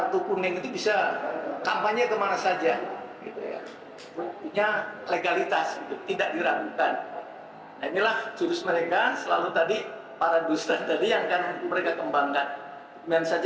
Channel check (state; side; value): identical; both; correlation 1.00